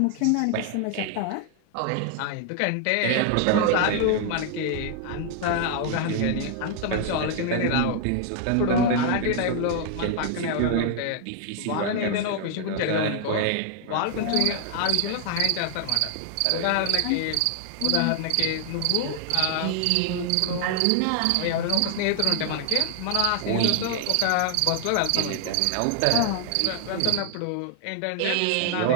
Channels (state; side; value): different; both; correlation 0.00